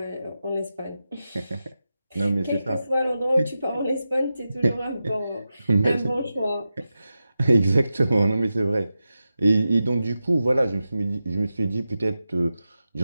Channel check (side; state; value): both; inverted; correlation -0.92